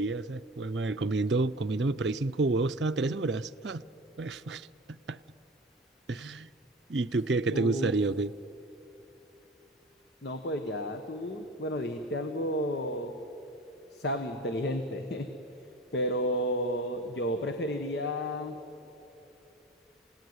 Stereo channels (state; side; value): normal; both; correlation 0.37